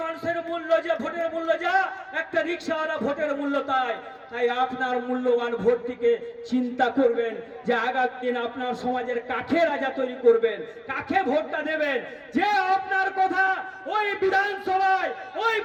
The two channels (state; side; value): identical; both; correlation 1.00